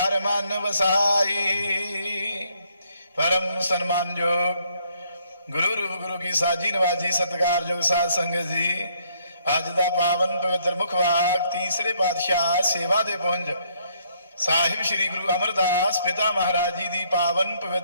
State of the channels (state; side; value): inverted; both; correlation -0.69